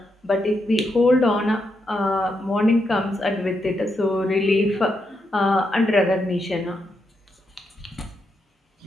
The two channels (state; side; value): normal; both; correlation 0.82